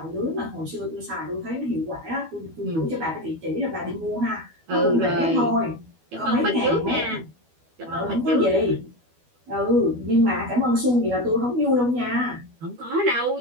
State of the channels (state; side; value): late; left; 12 ms